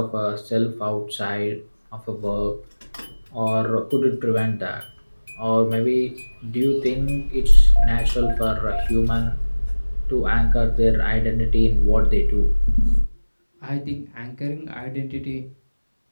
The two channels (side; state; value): both; inverted; correlation -1.00